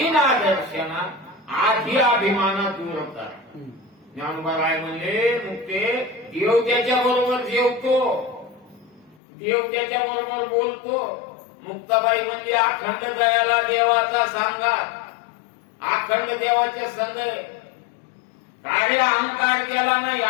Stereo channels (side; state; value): right; drops out; at 9.2 s